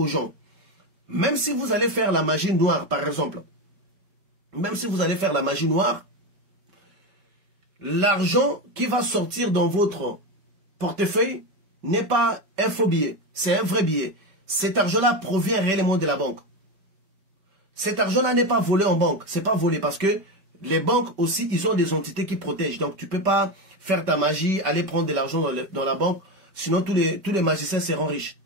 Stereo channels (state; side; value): late; left; 5.2 ms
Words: gens. Même si vous allez faire la magie noire, par exemple, même si vous allez faire la magie noire, l'argent qui va sortir dans votre portefeuille n'est pas un faux billet, c'est un vrai billet. Cet argent-là provient réellement de la banque. Cet argent-là n'est pas volé en banque, c'est pas volé parce que les banques aussi, ils ont des entités qui protègent. Donc tu ne peux pas faire ta magie, aller prendre de l'argent dans la banque, sinon tous les magiciens seront riches.